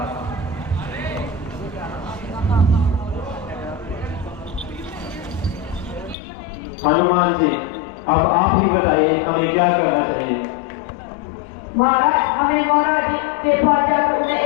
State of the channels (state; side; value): drops out; right; at 6.2 s